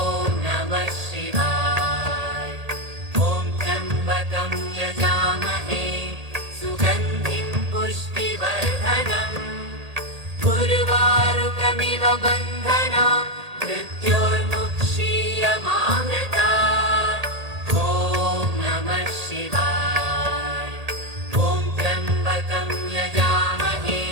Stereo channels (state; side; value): late; left; 1.8 ms